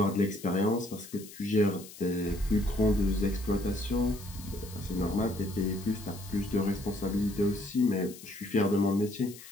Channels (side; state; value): left; noise; hiss, 17 dB below the sound